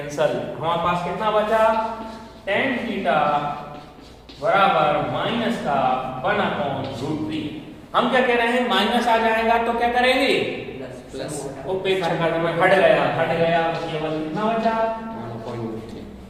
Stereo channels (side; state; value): both; identical; correlation 1.00